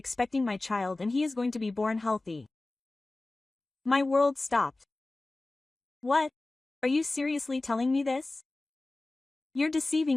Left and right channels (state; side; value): quieter; right; 3.0 dB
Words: my child and he is going to be born healthy. My world stopped. What? Are you seriously telling me this? You're